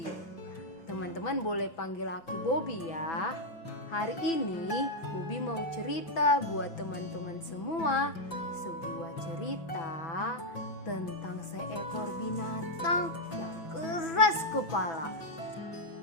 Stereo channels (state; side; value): late; right; 6.1 ms